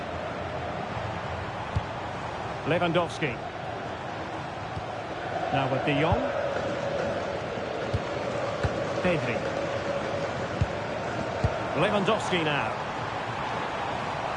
Lewandowski. Now with De Jong. Pedri. Lewandowski now.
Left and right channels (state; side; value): identical; both; correlation 1.00